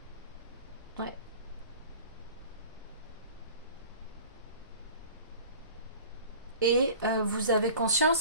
Ouais. Et vous avez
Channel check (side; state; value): both; inverted; correlation -0.42